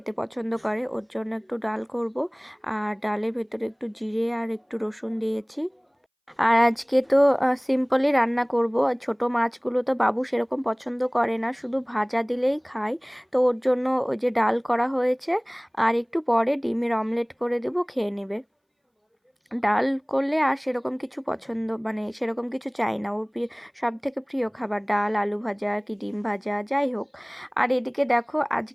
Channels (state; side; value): identical; both; correlation 1.00